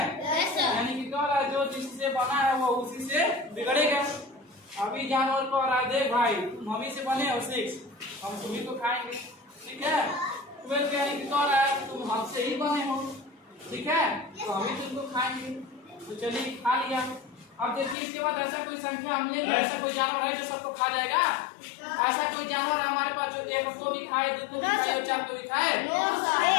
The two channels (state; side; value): drops out; right; at 17.9 s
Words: यानी कि क्या है, जो जिससे बना है वो उसी से बिगड़ेगा। अभी जानवर को आ देख भाई, तुम हम ही से बने हो 6, हम तुम्ही को खाएंगे। ठीक है। 12 यानी कि क्या है, तुम हमसे ही बने हो। ठीक है, तो हम ही तुमको खाएंगे। तो चलिए खा लिया। अब देखिए इसके बाद ऐसा कोई संख्या हम लेंगे, ऐसा कोई जानवर है जो सबको खा जाएगा? ऐसा कोई जानवर है हमारे पास जो एक को भी खाए, दो को भी खाए और चार को भी खाए?